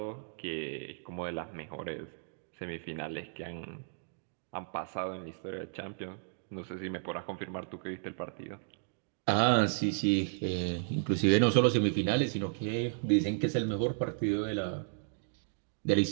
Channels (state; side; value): silent; left; digital silence